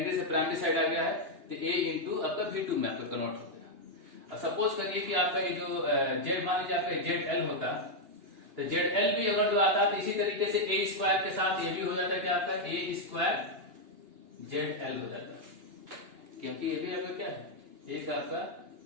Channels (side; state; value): left; late; 2.9 ms